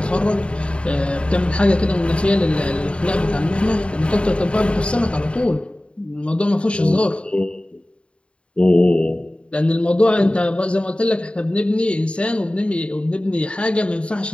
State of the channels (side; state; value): right; late; 0.057 ms